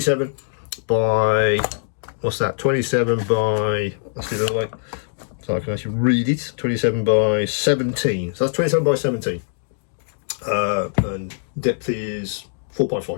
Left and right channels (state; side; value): silent; right; digital silence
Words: by, what's that? 27 by, let's do it the other way, so I can actually read it. 27 by 17. So that's 27 by 17. And depth is